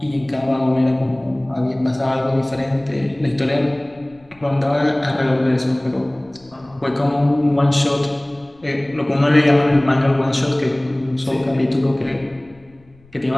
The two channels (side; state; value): left; noise; rumble, 29 dB below the sound